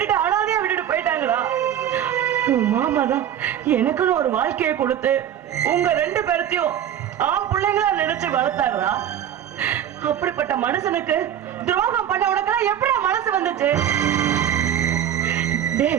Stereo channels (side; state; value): left; quieter; 10.3 dB